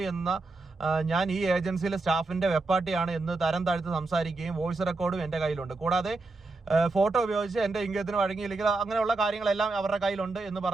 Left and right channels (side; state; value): left; quieter; 3.4 dB